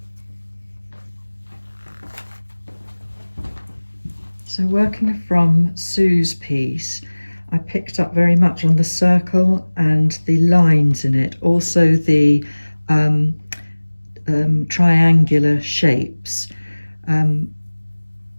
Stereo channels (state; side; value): inverted; both; correlation -1.00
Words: So working from Sue's piece, I picked up very much on the circle and the lines in it, also the triangular shapes, and